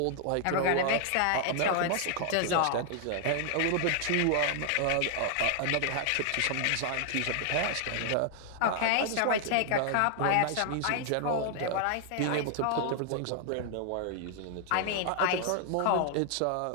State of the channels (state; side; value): different; both; correlation 0.00